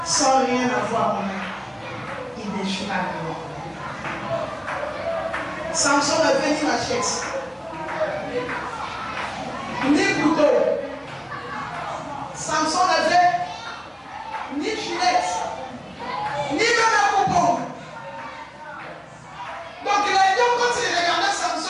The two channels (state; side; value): identical; both; correlation 1.00